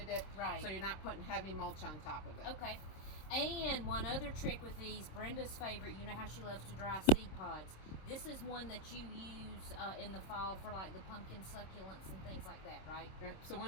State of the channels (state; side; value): late; right; 26 ms